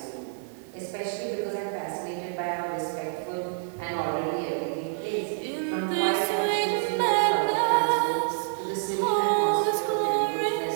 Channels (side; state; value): left; silent; digital silence